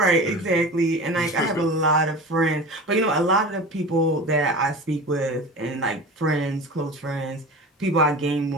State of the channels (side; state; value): both; normal; correlation 0.34